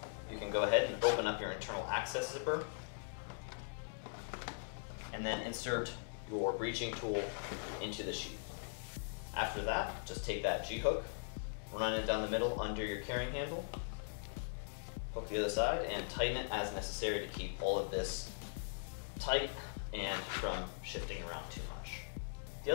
you can go ahead and open up your internal access zipper and then insert your breaching tool into the sheath. After that, just take that G-hook, run it down the middle under your carrying handle, hook the other side, and tighten it as necessary to keep all of this tight and from shifting around too much. The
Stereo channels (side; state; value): right; silent; digital silence